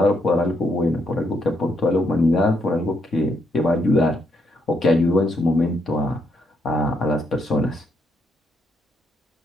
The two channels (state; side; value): normal; both; correlation 0.77